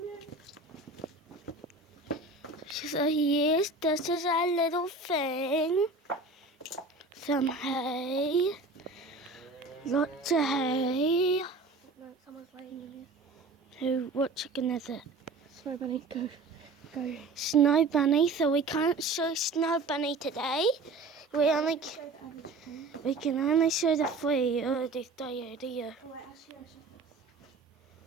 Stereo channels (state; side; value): quieter; left; 3.4 dB